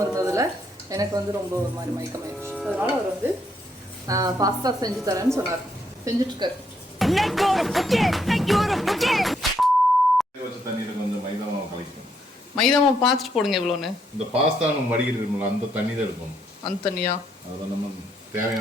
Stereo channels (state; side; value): normal; both; correlation 0.74